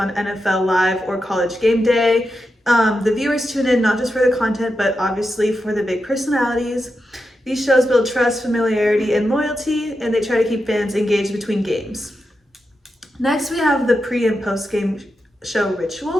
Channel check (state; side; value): normal; both; correlation 0.88